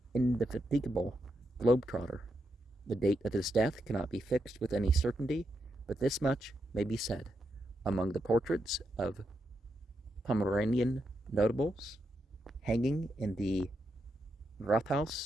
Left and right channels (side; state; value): both; normal; correlation 0.83